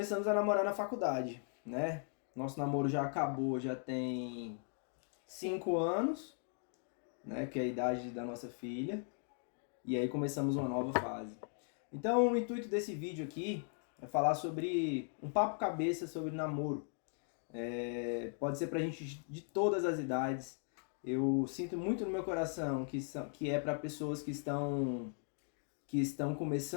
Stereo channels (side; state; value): right; silent; 52 dB below the other